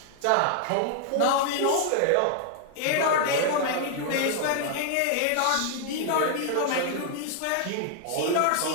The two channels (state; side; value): different; both; correlation 0.00